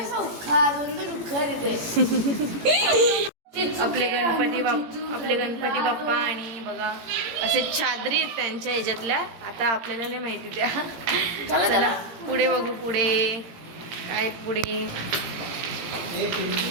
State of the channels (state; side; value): late; left; 18 ms